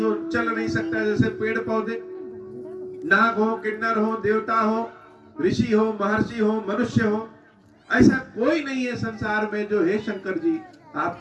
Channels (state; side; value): identical; both; correlation 1.00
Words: चल नहीं सकता, जैसे पेड़ पौधे, नाग हो, किन्नर हो, देवता हो, ऋषि हो, महर्षि हो, मनुष्य हो, ऐसा कोई नहीं है संसार में जो हे शंकर जी